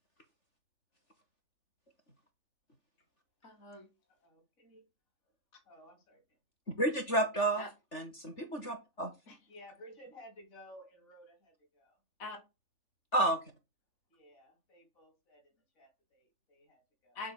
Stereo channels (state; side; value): late; right; 3.4 ms